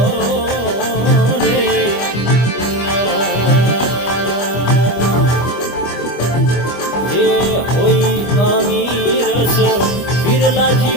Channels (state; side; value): late; right; 25 ms